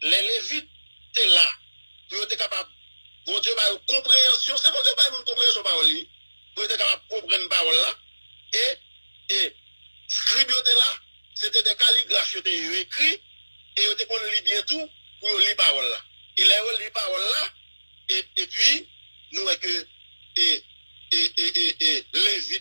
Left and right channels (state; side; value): inverted; both; correlation -1.00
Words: Les Lévites étaient là. Ils étaient capables. Bon Dieu, par une compréhension. C'est bon Dieu, par une compréhension parole. Ils étaient capables de comprendre parole là. Et scribes étaient là. C'était des calligraphes qui étaient écrits. Et ils étaient qu'on lit bien tout pour lire parole là. Il a lu parole là. Et puis, nous voyons que